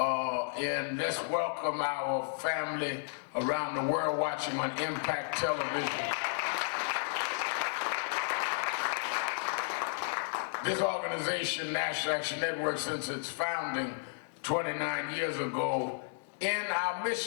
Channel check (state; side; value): silent; right; digital silence